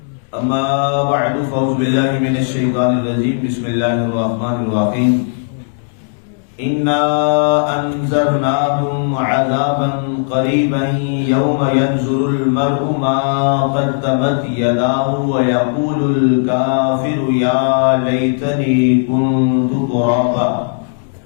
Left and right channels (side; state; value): right; silent; digital silence